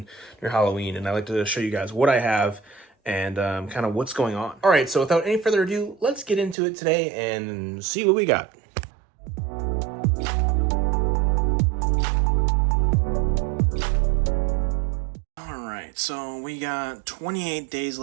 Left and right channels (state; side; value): drops out; left; at 6.6 s